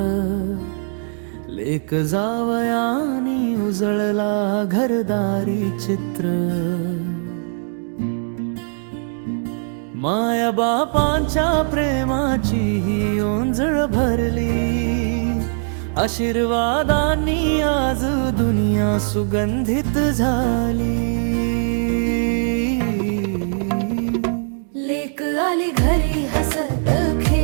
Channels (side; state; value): left; silent; digital silence